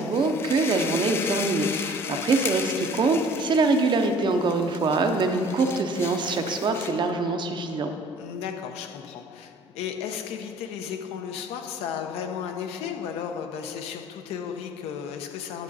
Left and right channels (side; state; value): both; normal; correlation 0.51